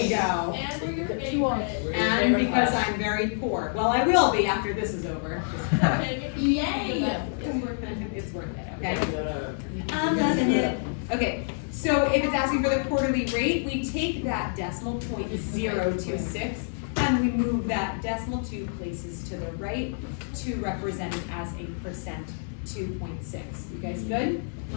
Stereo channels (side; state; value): right; silent; digital silence